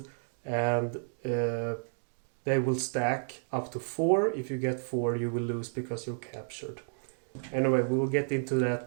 and they will stack up to 4. If you get 4, you will lose because you're captured. Anyway, we will get into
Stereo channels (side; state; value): left; silent; digital silence